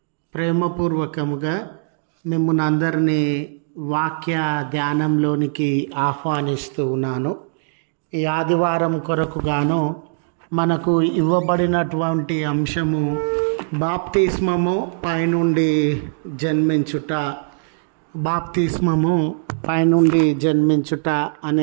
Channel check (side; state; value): left; silent; digital silence